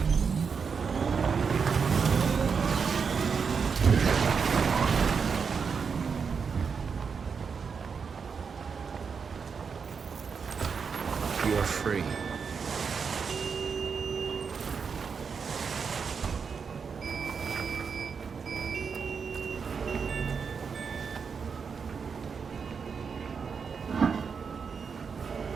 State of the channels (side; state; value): left; quieter; 5.9 dB